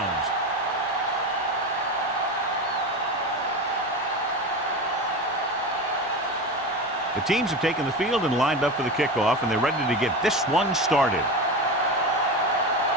The teams have taken the field and lined up for the kickoff, and they're ready to get this one started.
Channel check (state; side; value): normal; both; correlation 0.24